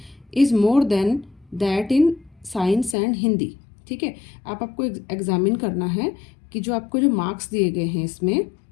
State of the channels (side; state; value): right; drops out; at 3.0 s